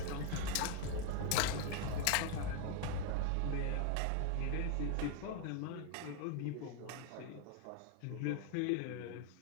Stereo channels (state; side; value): different; both; correlation 0.01